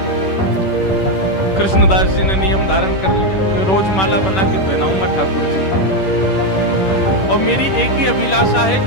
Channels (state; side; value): late; right; 10 ms